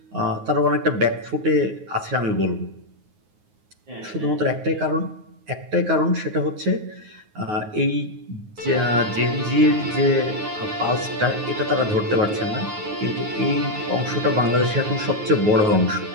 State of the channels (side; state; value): left; late; 9.5 ms